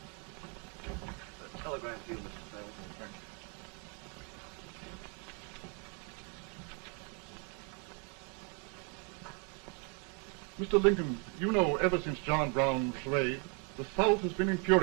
Telegram to you, Mr. Fell. Mr. Lincoln, you know ever since John Brown was slain, the South has been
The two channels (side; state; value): left; quieter; 34.6 dB